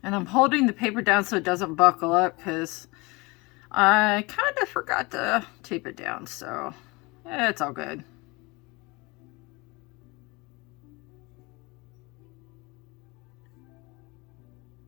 And I'm holding the paper down so it doesn't buckle up, because I kind of forgot to tape it down, so it's all good.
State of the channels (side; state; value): right; quieter; 25.3 dB